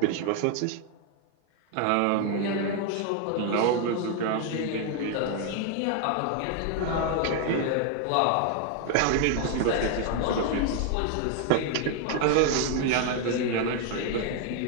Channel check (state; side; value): different; both; correlation 0.00